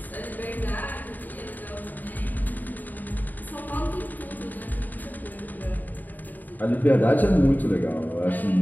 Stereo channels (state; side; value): late; right; 0.085 ms